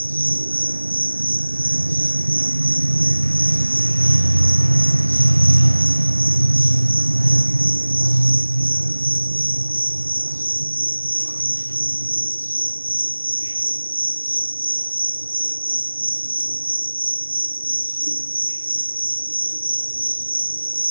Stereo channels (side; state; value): both; inverted; correlation -1.00